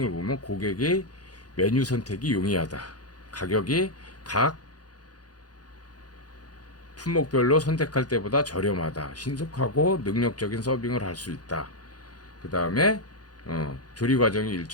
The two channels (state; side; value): late; right; 0.69 ms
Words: 보면, 고객의 메뉴 선택이 용이하다. 가격이 각 품목별로 선택할 때보다 저렴하다. 신속하고 능력적인 서빙을 할 수 있다. 그 다음에 조리 과정이